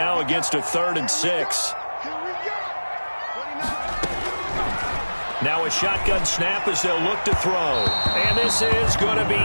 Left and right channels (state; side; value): inverted; both; correlation -1.00